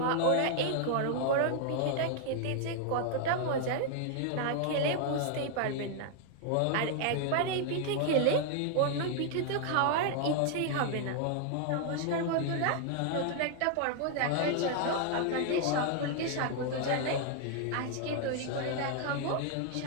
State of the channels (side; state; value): both; different; correlation 0.00